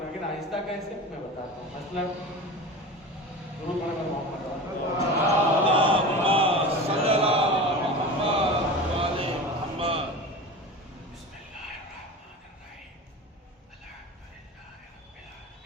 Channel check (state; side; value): normal; both; correlation 0.30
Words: ہے، لیکن آہستہ کیسے میں بتاتا ہوں. مثلا ضرور پڑھنا محمد